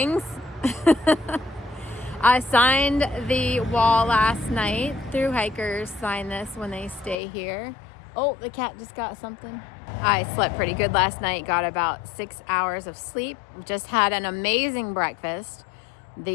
I signed the wall last night. Thru-hikers sign this when they stay here. Oh, the cat just got something. I slept pretty good last night, got about 6 hours of sleep. Just had an amazing breakfast.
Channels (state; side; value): drops out; right; at 7.2 s